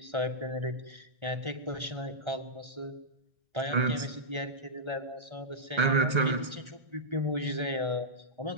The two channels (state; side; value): late; left; 1.3 ms